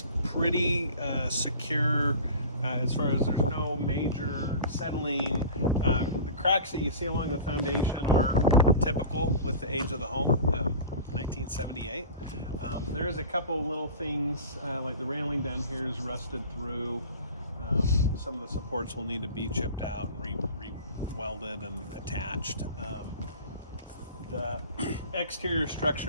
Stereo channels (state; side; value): inverted; both; correlation -0.37